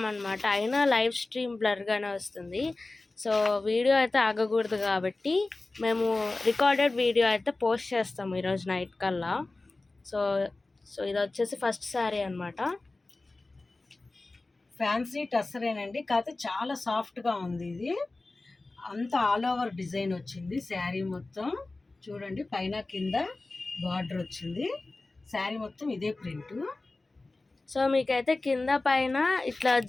అయినా లైవ్ స్ట్రీమ్ బ్లర్గానే వస్తుంది. సో వీడియో అయితే ఆగకూడదు కాబట్టి మేము రికార్డెడ్ వీడియో అయితే పోస్ట్ చేస్తాము ఈరోజు నైట్ కల్లా. సో ఇది వచ్చేసి ఫస్ట్ శారీ అనమాట. ఫ్యాన్సీ టస్సరేనండి, కాకపోతే చాలా సాఫ్ట్గా ఉంది. ఇది అంతా ఆల్ ఓవర్ డిజైన్ వచ్చింది. శారీ మొత్తం చూడండి, పైన కింద బార్డర్ వచ్చింది. శారీ మొత్తం ఇదే ప్రింట్. సో మీకైతే కింద పైన ఇట్లా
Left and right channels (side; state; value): right; quieter; 3.2 dB